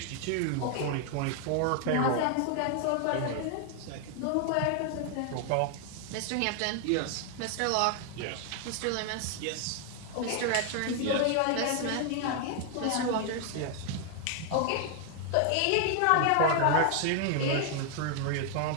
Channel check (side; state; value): both; different; correlation 0.00